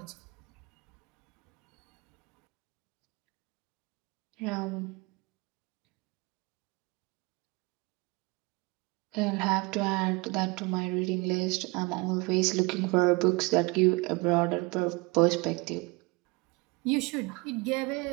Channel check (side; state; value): left; quieter; 26.3 dB